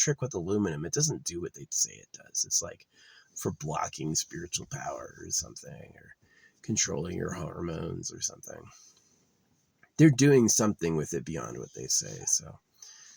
with aluminum. It doesn't do what they say it does. It's like for blocking spiritual power or something, or controlling your hormones or something. They're doing something with it beyond what they say. So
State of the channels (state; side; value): identical; both; correlation 1.00